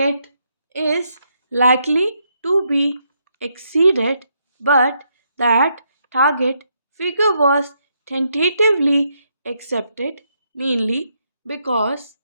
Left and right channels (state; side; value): inverted; both; correlation -0.77